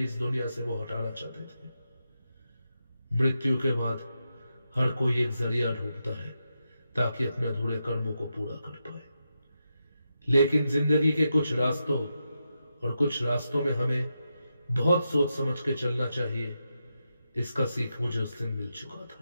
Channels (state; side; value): inverted; both; correlation -0.87